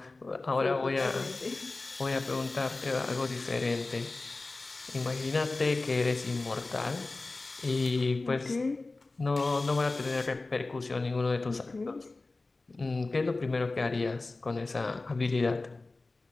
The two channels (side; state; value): right; quieter; 3.4 dB